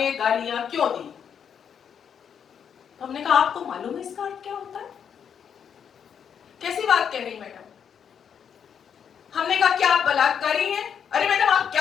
गालियां क्यों दी। हमने कहा आपको मालूम है इसका अर्थ क्या होता है? कैसी बात कह रही मैडम? हमने कहा क्या आप बलात्कारी हैं? अरे मैडम आप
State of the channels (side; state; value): right; quieter; 7.8 dB